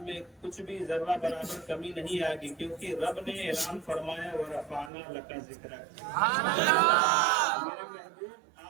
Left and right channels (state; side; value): drops out; left; at 4.9 s